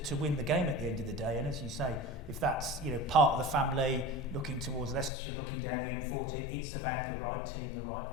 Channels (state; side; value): drops out; right; at 5.1 s